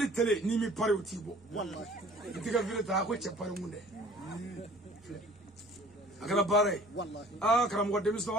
télé n'i mi pari o t'i bɔ wallahi i t'i ka vidéo ta a ko cɛ pari kun dɛ a kɛra baara ye wallahi karamɔgɔ denmisɛnw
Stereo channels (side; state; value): both; normal; correlation 0.50